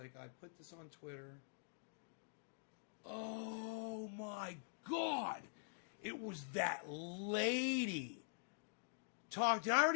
I put this on Twitter. Oh my God! It was that lady. Did I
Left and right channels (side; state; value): right; silent; digital silence